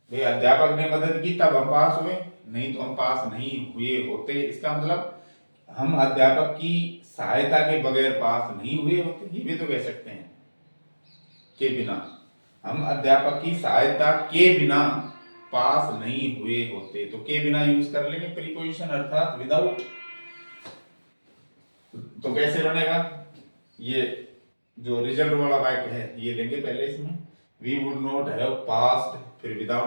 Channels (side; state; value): both; inverted; correlation -1.00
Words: भाई अध्यापक ने मदद की तब हम पास हुए, नहीं तो हम पास नहीं हुए होते। इसका मतलब हम अध्यापक की सहायता के बगैर पास नहीं हुए होते, ये भी तो कह सकते हैं। के बिना, हम अध्यापक की सहायता के बिना पास नहीं हुए होते। तो के बिना यूज कर लेंगे प्रीपोजिशन, अर्थात विदाउट। तो कैसे बनेगा? ये जो रिजल्ट वाला वाक्य है ये लेंगे पहले इसमें, we would not have passed, फिर